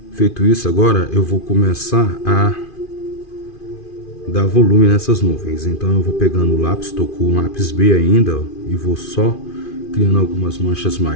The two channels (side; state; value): right; late; 2.5 ms